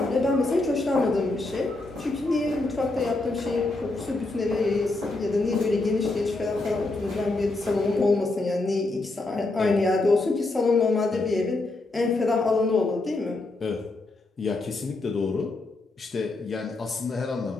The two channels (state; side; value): quieter; right; 3.1 dB